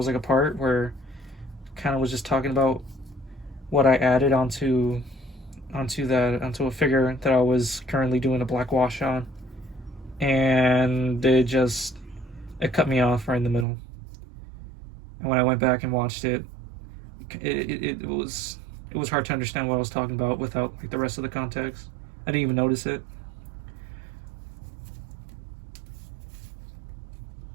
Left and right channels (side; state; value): left; drops out; at 13.7 s